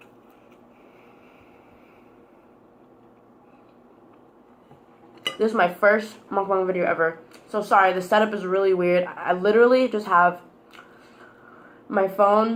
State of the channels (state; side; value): identical; both; correlation 1.00